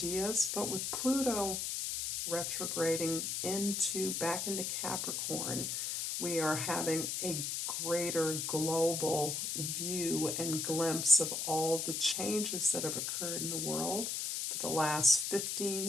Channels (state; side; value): noise; left; hiss, 2 dB below the sound